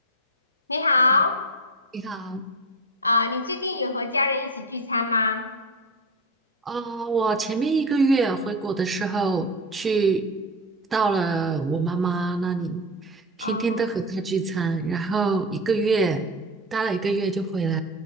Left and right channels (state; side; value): normal; both; correlation 0.22